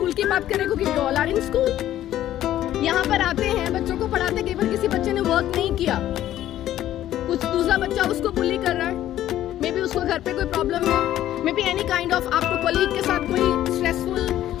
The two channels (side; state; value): right; quieter; 12.8 dB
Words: की बात करें क्योंकि we all are in school. यहाँ पर आते हैं, बच्चों को पढ़ाते, कई बार किसी बच्चे ने वर्क नहीं किया, कुछ दूसरा बच्चा उसको बुली कर रहा है, मे बी उसको घर पे कोई प्रॉब्लम है, may be any kind of आपको कलीग के साथ कोई स्ट्रेसफुल